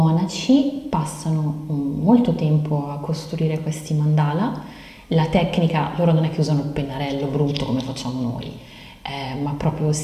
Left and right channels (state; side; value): identical; both; correlation 1.00